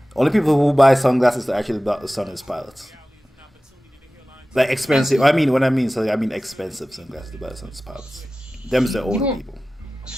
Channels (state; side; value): normal; both; correlation 0.96